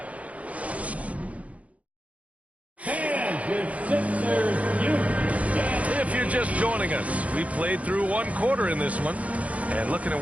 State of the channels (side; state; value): left; late; 0.067 ms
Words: If you're just joining us, we played through 1 quarter in this one. And looking at